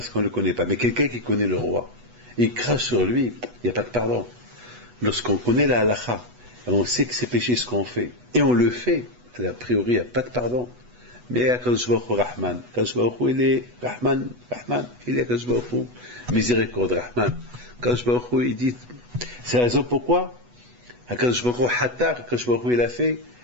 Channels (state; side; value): late; left; 8.1 ms